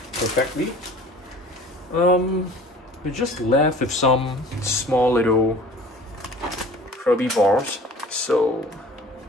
perfectly. We're just left with some small little herbivores. So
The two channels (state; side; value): normal; both; correlation 0.46